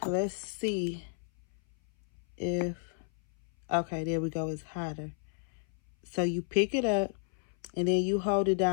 let's see if, okay, there we go, it's hotter. So you pick it up and then you hold it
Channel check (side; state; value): right; silent; 56 dB below the other